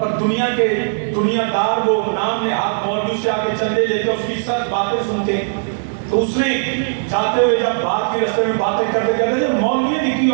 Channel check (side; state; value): left; silent; digital silence